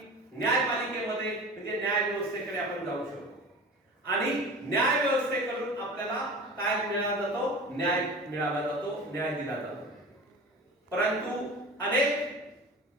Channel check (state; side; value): normal; both; correlation 0.36